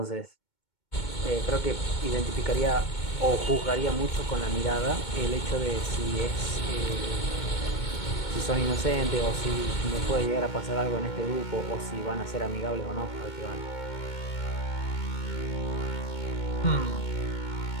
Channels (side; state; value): right; late; 2.2 ms